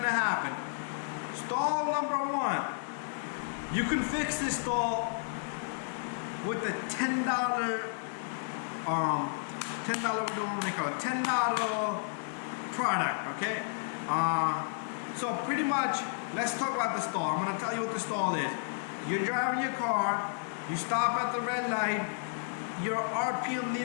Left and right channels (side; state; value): right; silent; digital silence